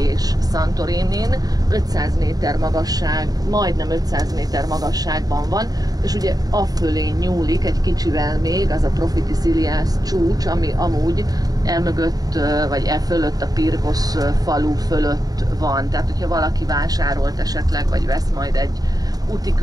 Santorinin, 500 méter magasság, majdnem 500 méter magasságban van, és ugye afölé nyúlik egy kicsivel még az a Profiti Silias csúcs, ami amúgy elmögött, vagy fölött a Pirgosz falu fölött van. Tehát, hogyha valaki vásárolt esetleg, vagy vesz majd egy úti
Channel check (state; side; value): late; left; 0.18 ms